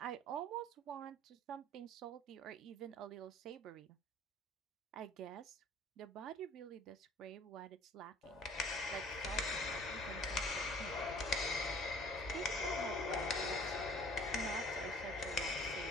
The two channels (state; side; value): normal; both; correlation 0.51